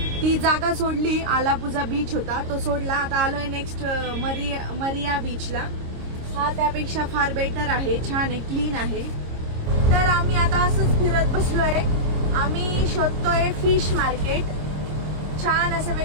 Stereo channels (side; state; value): left; late; 26 ms